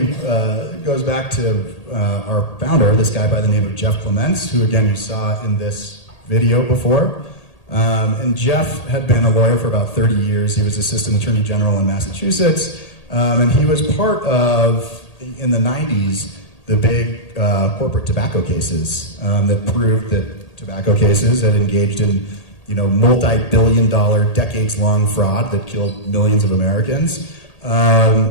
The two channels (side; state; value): right; late; 1.8 ms